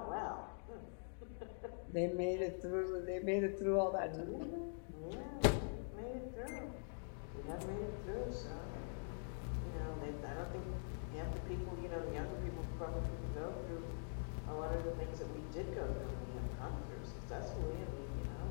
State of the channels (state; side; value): silent; right; digital silence